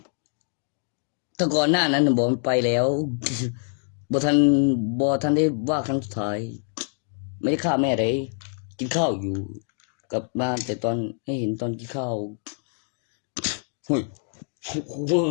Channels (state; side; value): silent; right; 61 dB below the other